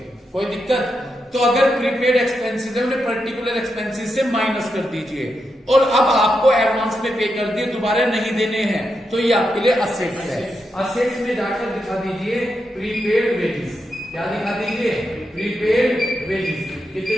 कोई दिक्कत? तो अगर प्रीपेड एक्सपेंसेस है उन्हें पर्टिकुलर एक्सपेंसेस से माइनस कर दीजिए और अब आपको एडवांस में पे कर दिए दोबारा नहीं देने हैं तो ये आपके लिए असेट्स है। असेट्स में जाकर दिखा दीजिए प्रीपेड वेजेस। क्या दिखा दीजिए प्रीपेड वेजेस।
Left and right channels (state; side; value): normal; both; correlation 0.85